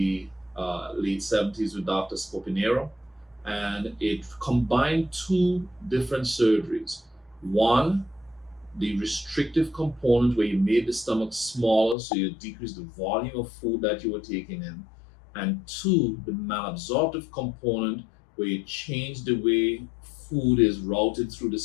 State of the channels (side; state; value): right; drops out; at 12.0 s